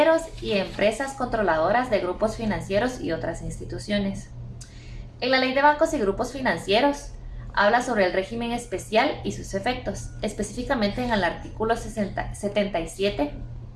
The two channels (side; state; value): both; identical; correlation 1.00